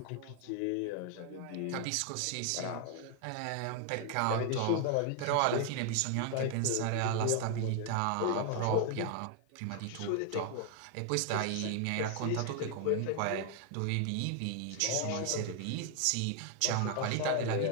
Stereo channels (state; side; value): different; both; correlation 0.00